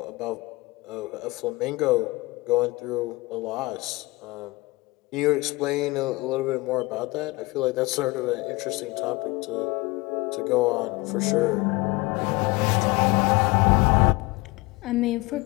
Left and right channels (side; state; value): right; quieter; 22.8 dB